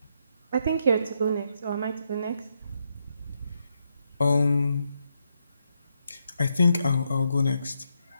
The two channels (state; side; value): inverted; both; correlation -0.80